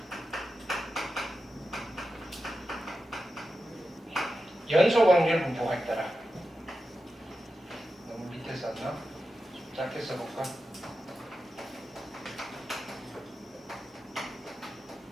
연속 확률 분포가 있더라. 너무 밑에 썼나? 좀 짧게 써볼까?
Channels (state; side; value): normal; both; correlation 0.90